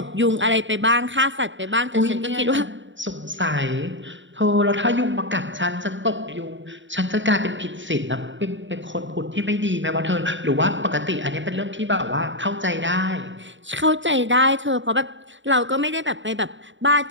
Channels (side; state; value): left; late; 0.55 ms